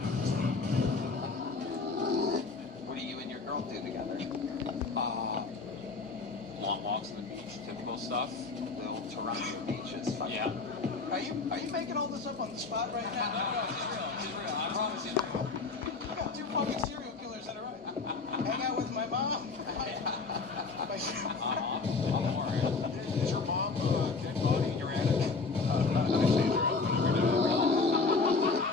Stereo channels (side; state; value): right; quieter; 4.2 dB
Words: What do you and your girl do together? Long walks on the beach, typical stuff. The old Toronto beaches. Yeah. Are you making all this up on the spot right now? No, it's real. It's real. I promise it's real. I got 2 fucking serial killers that are right. Hang out with my mom. Don't worry. Is your mom dead body in your attic?